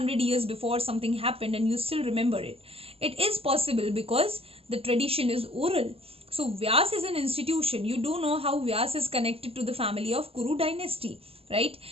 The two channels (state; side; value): late; left; 0.28 ms